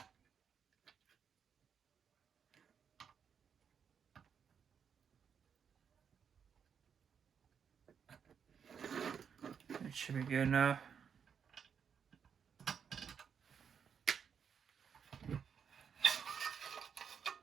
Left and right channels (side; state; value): left; quieter; 7.2 dB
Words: It should be good enough.